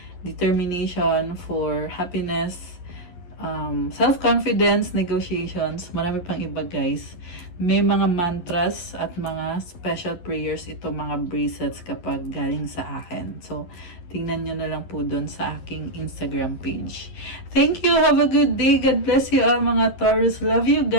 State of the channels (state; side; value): late; right; 11 ms